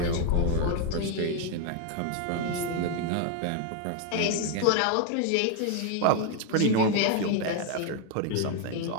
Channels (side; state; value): both; different; correlation 0.01